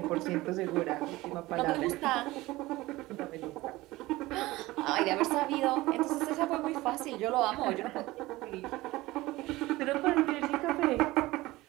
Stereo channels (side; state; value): left; quieter; 19.1 dB